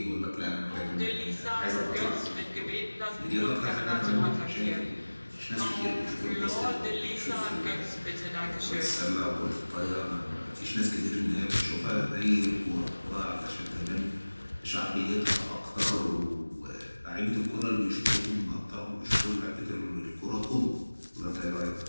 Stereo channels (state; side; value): inverted; both; correlation -1.00